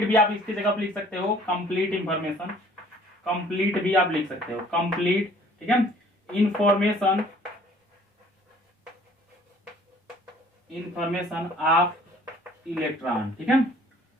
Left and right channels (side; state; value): both; normal; correlation 0.55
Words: भी आप इसकी जगह पर लिख सकते हो, कंप्लीट इंफॉर्मेशन, कंप्लीट भी आप लिख सकते हो, कंप्लीट। ठीक है, इंफॉर्मेशन ऑफ इलेक्ट्रॉन। ठीक है,